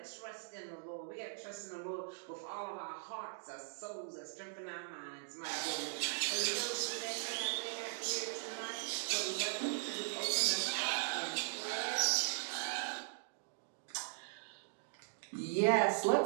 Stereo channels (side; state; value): left; silent; digital silence